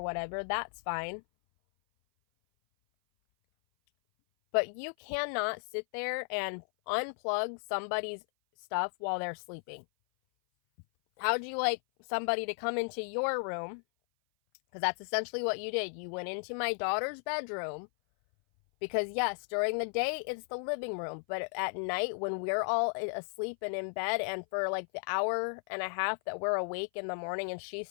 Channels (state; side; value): silent; right; 55 dB below the other